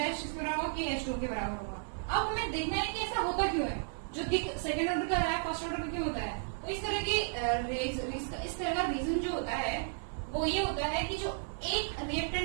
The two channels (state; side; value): silent; left; 55 dB below the other